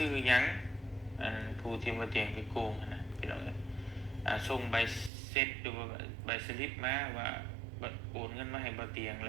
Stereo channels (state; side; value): drops out; left; at 5.1 s